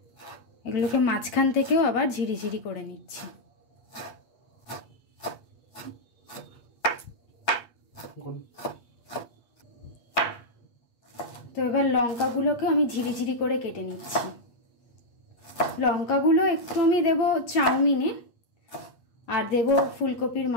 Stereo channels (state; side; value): late; right; 8.5 ms